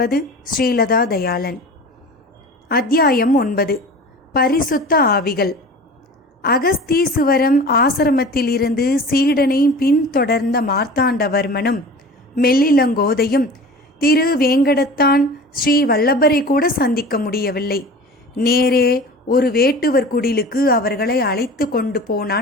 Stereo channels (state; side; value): normal; both; correlation 0.38